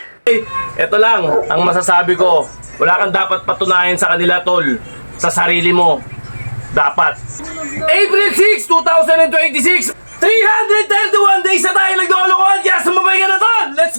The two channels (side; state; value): both; inverted; correlation -1.00